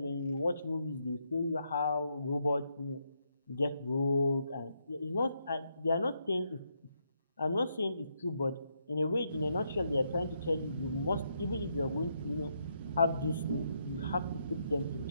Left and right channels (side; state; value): both; inverted; correlation -0.78